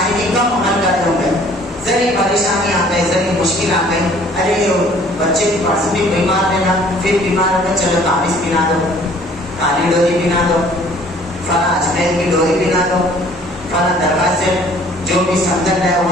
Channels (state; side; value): normal; both; correlation 0.55